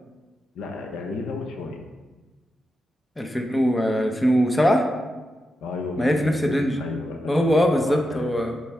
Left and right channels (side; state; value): both; normal; correlation 0.88